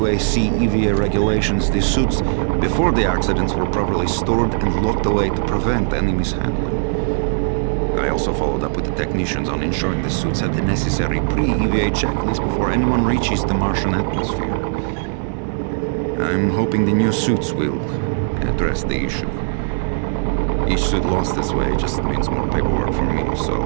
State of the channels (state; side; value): silent; left; digital silence